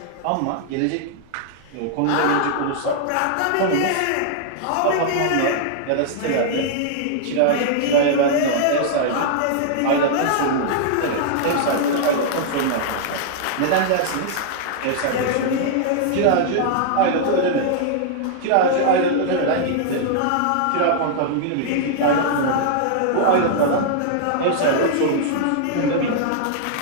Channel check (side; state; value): both; different; correlation -0.01